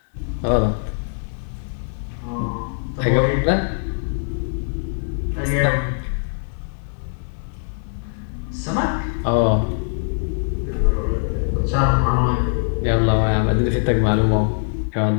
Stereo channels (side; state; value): right; silent; 64 dB below the other